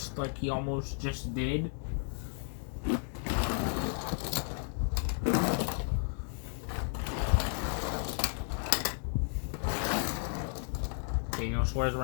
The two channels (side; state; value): right; silent; 56 dB below the other